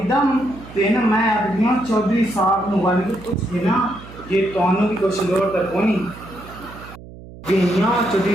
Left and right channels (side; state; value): right; noise; hum, 17 dB below the sound